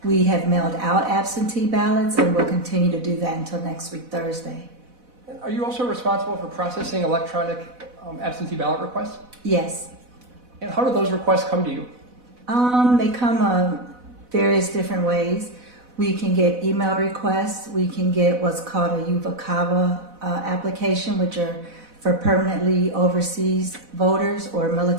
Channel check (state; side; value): late; left; 4.1 ms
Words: we have mailed out absentee ballots, and we'll continue to do that until next week, Thursday. And are you also responsible for processing electronic absentee ballot requests? Yes. And how do those requests come to you? They come various different ways. We can get email requests. We can get what's called a UVA CAVA application, which are For permanently overseas voters or